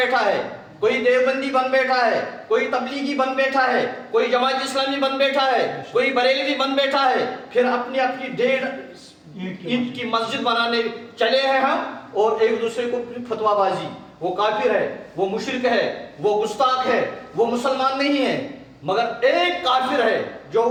ہے، کوئی دیوبندی بن بیٹھا ہے، کوئی تبلیغی بن بیٹھا ہے، کوئی جماعت اسلامی بن بیٹھا ہے، کوئی بریلوی بن بیٹھا ہے، پھر اپنی 1.5 اینٹ کی مسجد بنانے چلے ہیں ہم، اور ایک دوسرے کو فتویٰ بازی۔ وہ کافر ہے، وہ مشرک ہے، وہ گستاخ ہے، وہ مسلمان نہیں ہے۔ مگر ایک کافر ہے جو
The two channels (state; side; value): identical; both; correlation 1.00